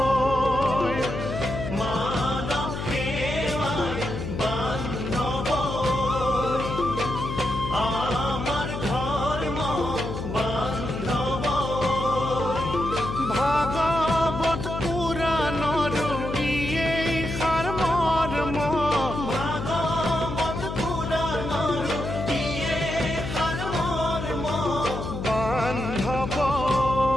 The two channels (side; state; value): left; noise; hum, 5 dB below the sound